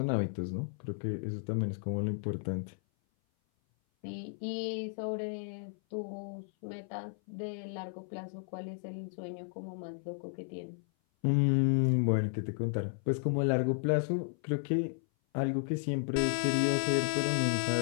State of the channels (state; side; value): silent; right; 55 dB below the other